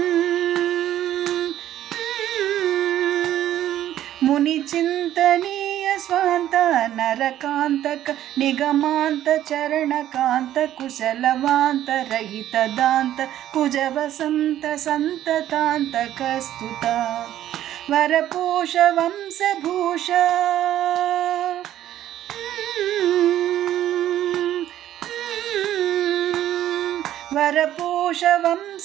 ముని చింతనీయ స్వాంత నరకాంతక నిగమాంత చరణకాంత కుశలవాంత రహిత దాంత కుజ వసంత సంతతాంతక స్తుత వరపోష వంశభూష వరపోష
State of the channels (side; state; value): left; quieter; 12.3 dB